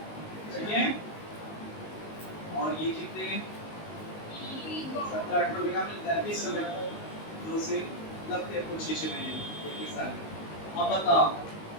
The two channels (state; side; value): late; right; 19 ms